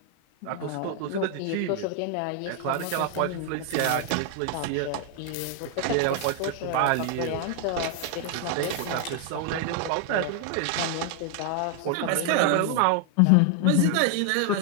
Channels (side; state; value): both; different; correlation 0.00